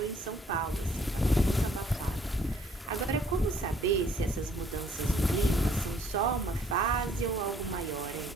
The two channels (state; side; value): normal; both; correlation 0.62